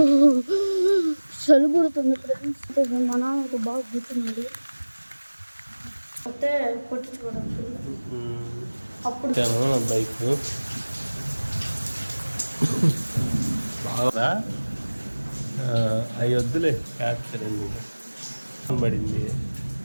చలి పుడుతుంది ఫ్రెండ్స్. మా నాన్నకు బాగా గుర్తున్నాడు అంటే కొట్టించుకోవడానికి అప్పుడు బైక్ బాగా అవి వద్దులే క్యాప్చర్ పడింది.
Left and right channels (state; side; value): inverted; both; correlation -1.00